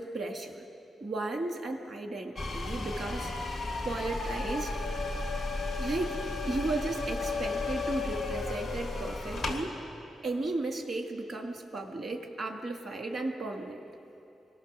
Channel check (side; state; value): both; normal; correlation 0.81